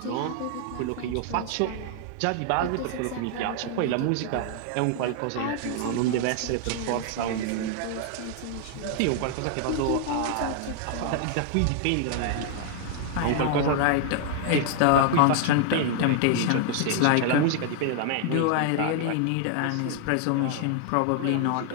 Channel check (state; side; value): different; both; correlation 0.00